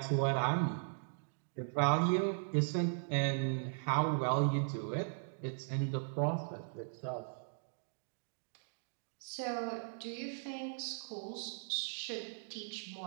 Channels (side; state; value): left; silent; digital silence